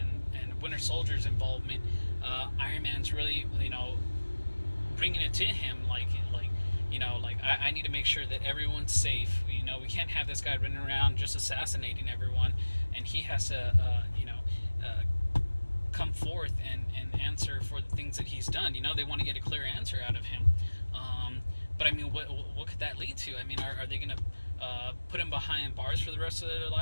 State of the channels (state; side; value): inverted; both; correlation -1.00